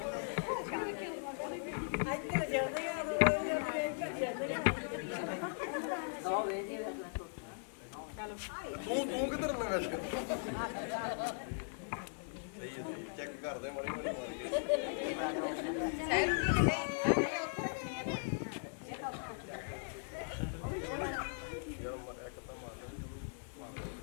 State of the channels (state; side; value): silent; right; digital silence